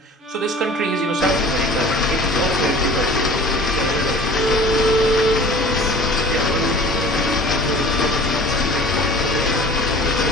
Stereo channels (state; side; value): normal; both; correlation 0.44